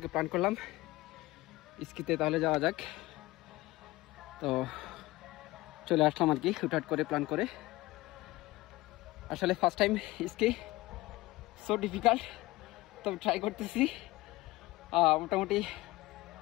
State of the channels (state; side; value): quieter; right; 19.5 dB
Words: প্ল্যান করলাম স্কিতে তাহলে যাওয়া যাক। তো চলে আসলাম আর কি, হুটহাট করে প্ল্যান করে। আসলে first time ski, so difficult, তো ট্রাই করতেছি। মোটামুটি